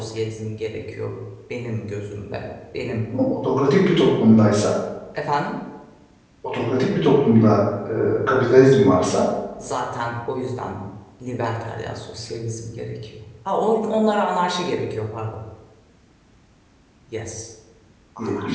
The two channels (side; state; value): both; identical; correlation 1.00